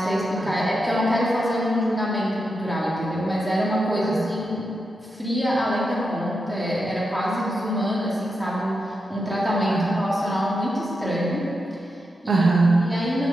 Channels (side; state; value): both; normal; correlation 0.86